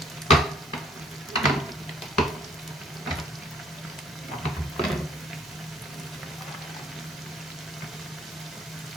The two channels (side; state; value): both; normal; correlation 0.62